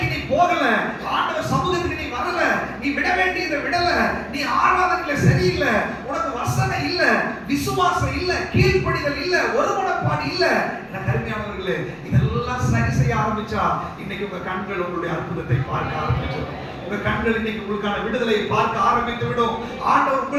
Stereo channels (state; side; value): identical; both; correlation 1.00